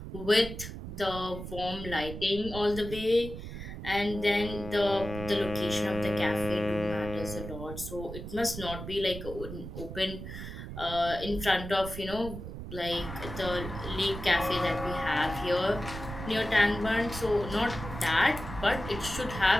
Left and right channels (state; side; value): noise; right; rumble, 9 dB below the sound